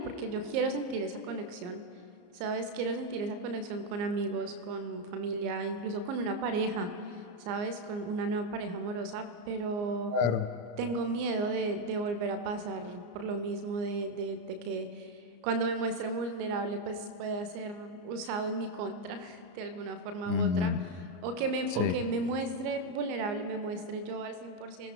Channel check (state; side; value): late; left; 34 ms